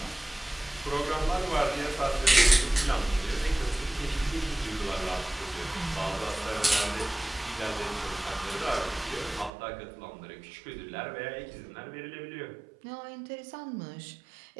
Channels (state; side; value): drops out; left; at 9.5 s